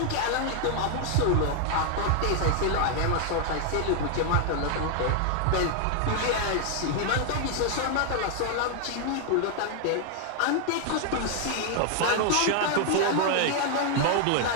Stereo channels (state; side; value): different; both; correlation 0.00